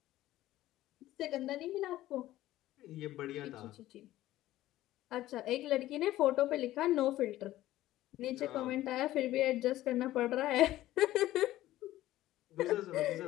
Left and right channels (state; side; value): quieter; right; 15.1 dB